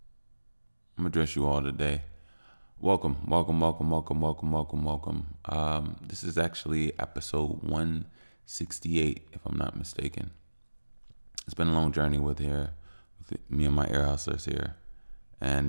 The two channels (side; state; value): both; inverted; correlation -1.00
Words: I'm gonna address you all today. Welcome. This is actually episode 168, if I'm not mistaken. It's been a long journey with me and my ear hustlers here,